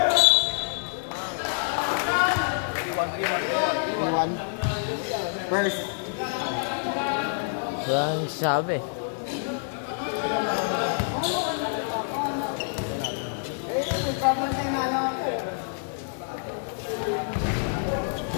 Iwan. First. Walang sabi.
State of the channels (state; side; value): silent; right; digital silence